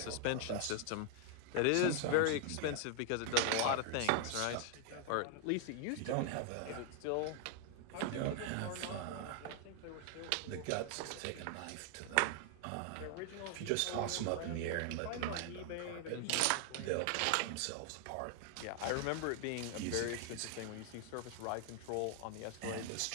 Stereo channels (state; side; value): different; both; correlation 0.00